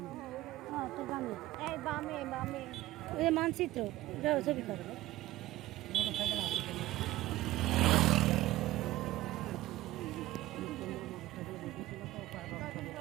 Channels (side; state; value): left; quieter; 16.5 dB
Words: হ্যাঁ তো বামে, এই বামে বামে ওই যে মানচিত্র, যাও ছবি করো। মোটরসাইকেল আছে।